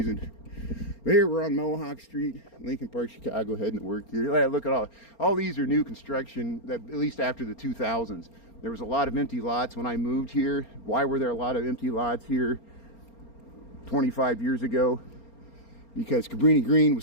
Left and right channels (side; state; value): right; late; 4.3 ms